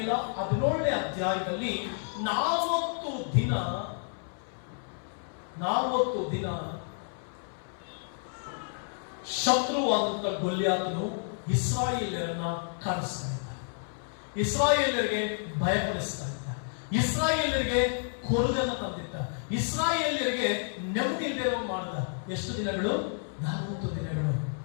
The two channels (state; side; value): silent; right; 58 dB below the other